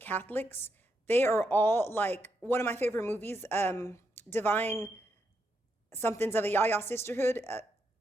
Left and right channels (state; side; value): normal; both; correlation 0.81